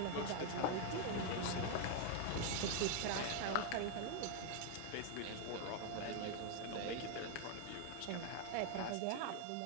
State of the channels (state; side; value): different; both; correlation 0.00